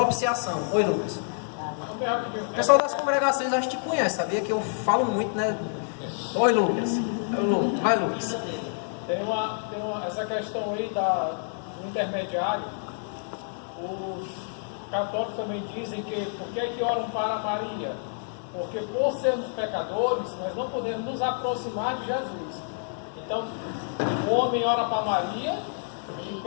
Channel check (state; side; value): silent; right; digital silence